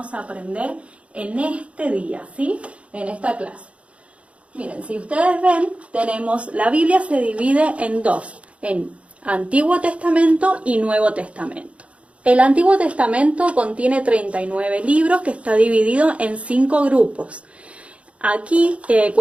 a aprender en este día, ¿sí? En esta clase. Miren, si ustedes ven, la Biblia se divide en 2, en Antiguo Testamento y Nuevo Testamento. El Antiguo Testamento contiene 39 libros que está dividido en 5 grupos. Aquí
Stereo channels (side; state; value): left; late; 0.062 ms